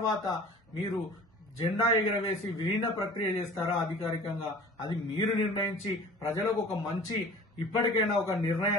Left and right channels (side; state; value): both; normal; correlation 0.44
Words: మీరు జెండా ఎగరవేసి విలీన ప్రక్రియ చేస్తారా అధికారికంగా, అది మీరు నిర్ణయించి ప్రజలకు ఒక మంచి ఇప్పటికైనా ఒక